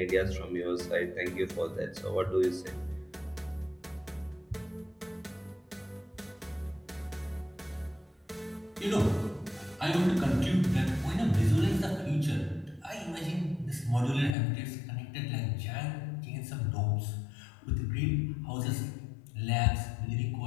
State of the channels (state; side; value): drops out; right; at 14.4 s